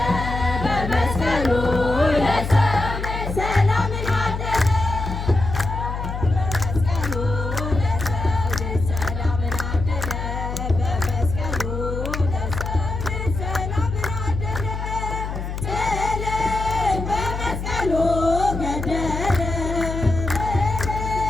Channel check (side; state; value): left; noise; hum, 5 dB below the sound